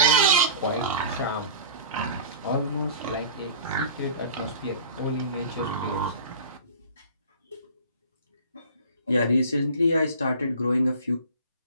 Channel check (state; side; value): inverted; both; correlation -0.40